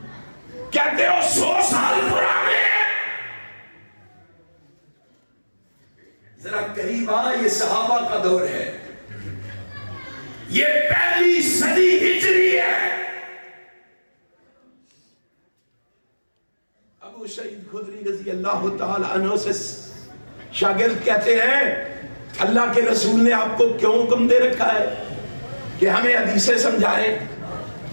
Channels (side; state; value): both; inverted; correlation -1.00